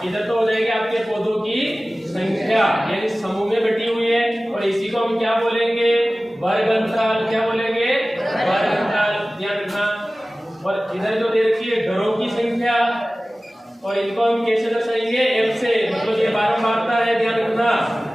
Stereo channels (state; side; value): normal; both; correlation 0.97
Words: इधर तो हो जाएगी आपके पौधों की संख्या, यानी समूह में बटी हुई है, और इसी को हम क्या बोलेंगे, वर्ग अंतराल। क्या बोलेंगे, वर्ग अंतराल, ध्यान रखना। और इधर जो दे रखी है घरों की संख्या, और इनको हम कैसे दर्शाएंगे, f से, मतलब ये बारंबारता है, ध्यान रखना।